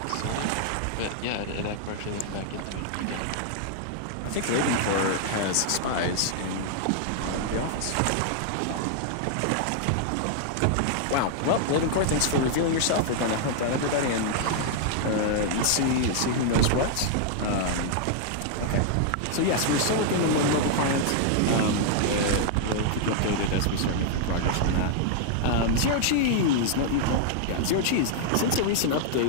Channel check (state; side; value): different; both; correlation -0.01